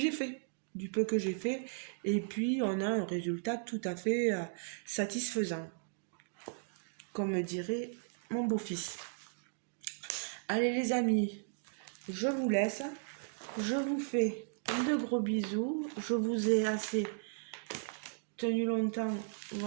fait. Du peu que j'ai fait. Et puis, on a un résultat tout à fait satisfaisant. Comme dirait mon beau-fils. Allez les amis, je vous laisse. Je vous fais de gros bisous. Je vous ai assez tenu longtemps.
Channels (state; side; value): silent; left; digital silence